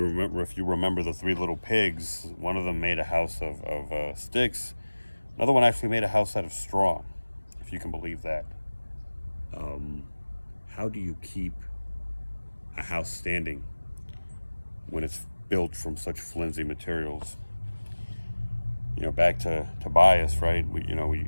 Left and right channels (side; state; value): both; inverted; correlation -1.00